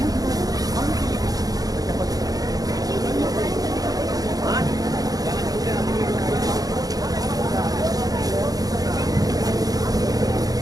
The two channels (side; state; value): left; late; 0.18 ms